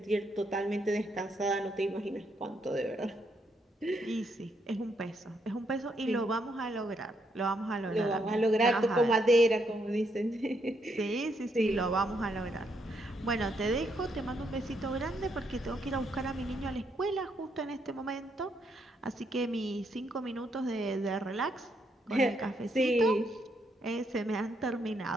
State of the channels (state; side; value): normal; both; correlation 0.76